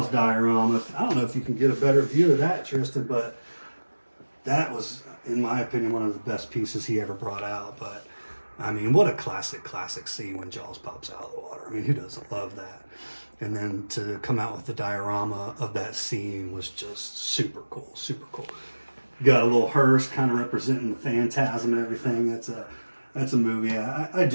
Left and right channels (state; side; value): inverted; both; correlation -1.00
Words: diorama. I don't know if you can get a better view of that, Tristan, but that was, in my opinion, one of the best pieces he ever brought out. But, I mean, what a classic scene when Jaws pops out of the water. I mean, who doesn't love that? And then to come out with the diorama of that scene was just super cool, super cool. Got a little hearse kind of representing the phantasm and everything. That's a movie I